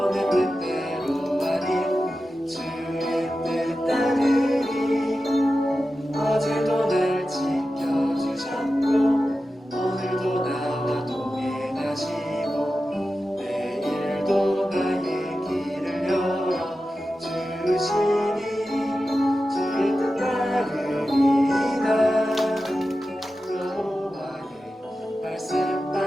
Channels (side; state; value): both; normal; correlation 0.93